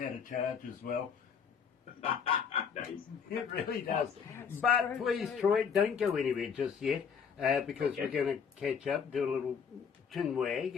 to charge as well. Nice. It really does. That's But true, please, too. Troy, don't go anywhere just yet, because Okay. we're going to catch up, do a little chin wag,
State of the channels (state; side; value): quieter; right; 6.7 dB